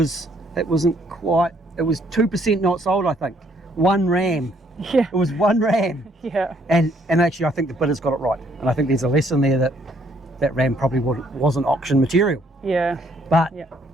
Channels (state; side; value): normal; both; correlation 0.66